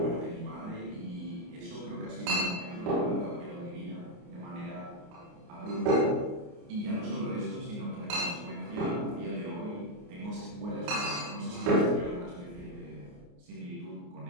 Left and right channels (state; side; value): late; left; 29 ms